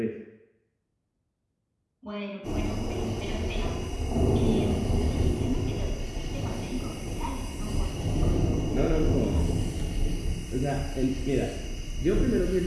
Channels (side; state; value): both; identical; correlation 1.00